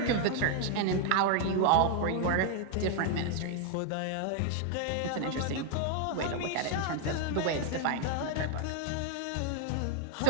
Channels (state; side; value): different; both; correlation 0.00